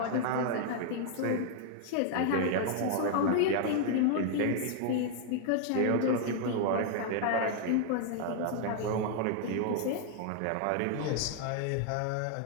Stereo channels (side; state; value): both; different; correlation 0.00